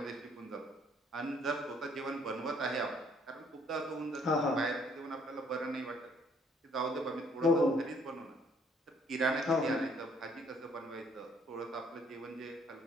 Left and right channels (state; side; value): normal; both; correlation 0.64